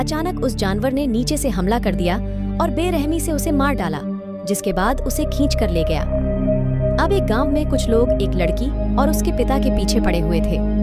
उस जानवर ने नीचे से हमला कर दिया और बेरहमी से उसे मार डाला, जिसके बाद उसे खींच कर ले गया। अब एक गांव में कुछ लोग एक लड़की और उसके पिता के पीछे पड़े हुए थे,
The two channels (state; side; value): identical; both; correlation 1.00